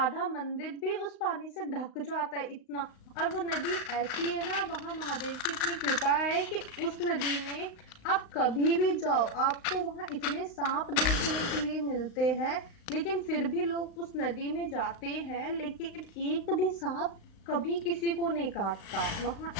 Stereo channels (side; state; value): right; late; 35 ms